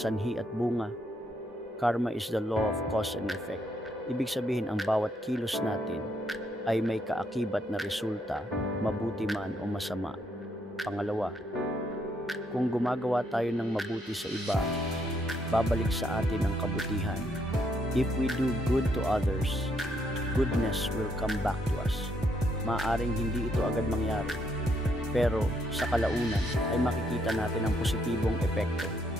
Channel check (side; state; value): both; normal; correlation 0.74